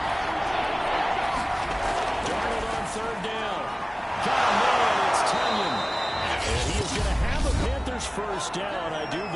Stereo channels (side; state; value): both; identical; correlation 1.00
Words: Darnold on third down. Got a man, it's Tunyon. And he is going to have a Panthers first down, I do